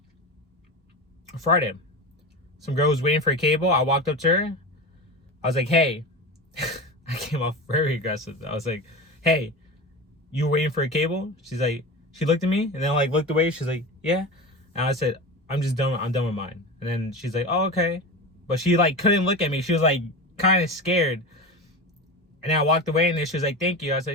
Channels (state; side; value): normal; both; correlation 0.26